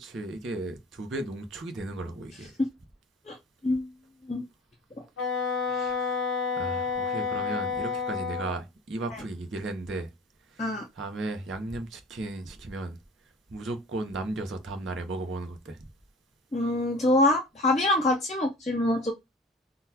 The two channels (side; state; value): both; normal; correlation 0.41